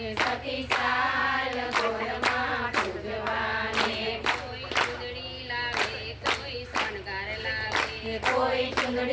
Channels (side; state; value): both; identical; correlation 1.00